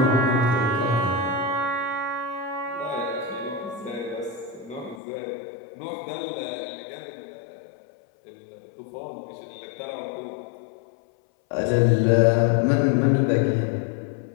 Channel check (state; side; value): drops out; right; at 5.0 s